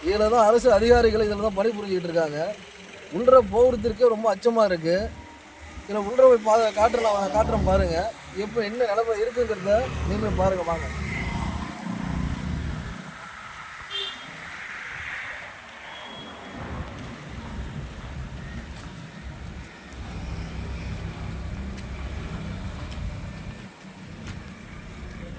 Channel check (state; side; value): identical; both; correlation 1.00